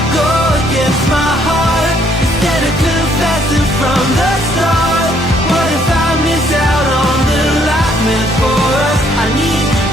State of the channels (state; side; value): normal; both; correlation 0.67